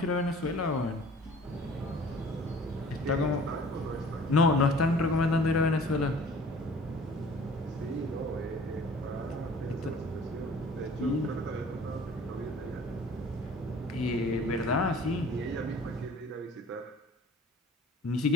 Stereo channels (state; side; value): normal; both; correlation 0.48